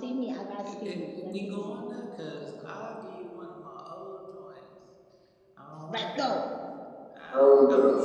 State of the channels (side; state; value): both; identical; correlation 1.00